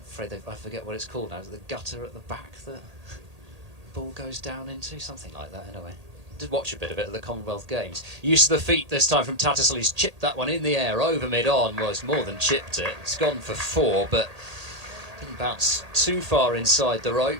I forget what it's called now. Is it the gutter at the back that ball goes down into? Something like that, anyway. Did watch a bit of it at the Commonwealth Games. Use of the feet this time from Tattersall. He's chipped that one in the air over mid-on. Well, it's more than chipped it. It's gone for 4, but didn't bounce too far inside the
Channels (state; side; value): late; left; 1.8 ms